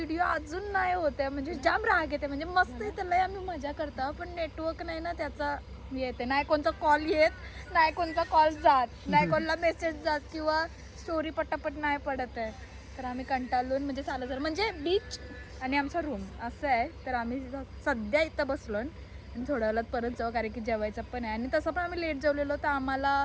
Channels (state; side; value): identical; both; correlation 1.00